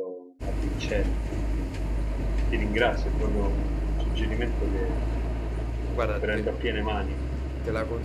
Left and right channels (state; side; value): identical; both; correlation 1.00